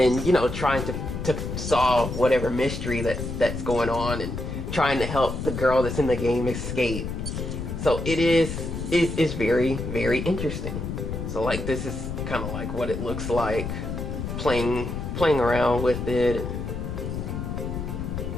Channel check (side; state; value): left; noise; rumble, 5 dB below the sound